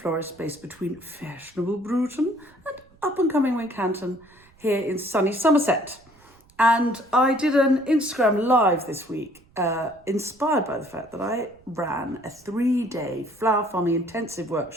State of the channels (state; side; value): noise; right; rumble, 29 dB below the sound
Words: based between fashionable Bruton and up-and-coming Wincanton here in sunny Somerset. And I did an Instagram live this week, inspired by the fact that I ran a 3-day flower farming intensive